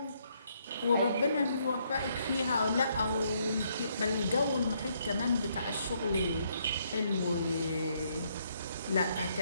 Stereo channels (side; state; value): both; inverted; correlation -0.72